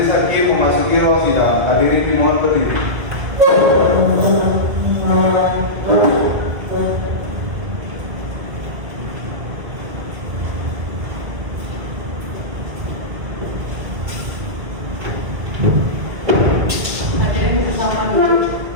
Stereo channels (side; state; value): left; late; 2.0 ms